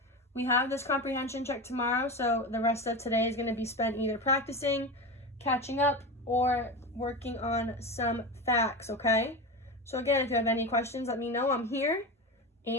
We have this comprehension check tomorrow, so the rest of today is going to be spent either practicing, catching up, or working on some facts, okay? So again, if you have any questions, let me know. I'm here,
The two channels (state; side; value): normal; both; correlation 0.23